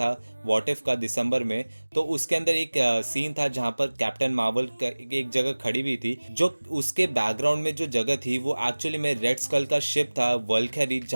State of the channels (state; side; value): inverted; both; correlation -1.00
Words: व्हाट इफ का दिसंबर में, तो उसके अंदर एक सीन था जहां पर कैप्टन मार्वल एक जगह खड़ी हुई थी, जो उसके बैकग्राउंड में जो जगह थी वो एक्चुअली में रेड स्कल का शिप था वल्क्यरी,